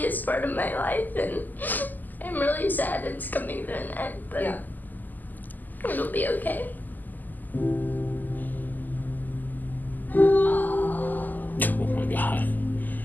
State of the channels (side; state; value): right; late; 0.085 ms